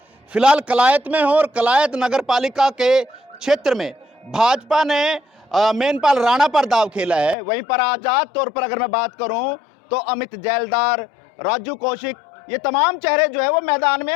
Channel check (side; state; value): right; drops out; at 7.4 s